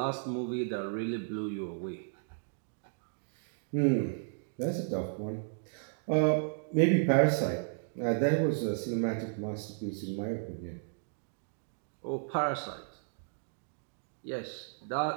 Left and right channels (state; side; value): silent; left; digital silence